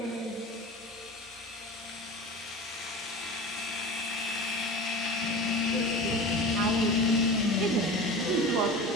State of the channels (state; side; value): normal; both; correlation 0.33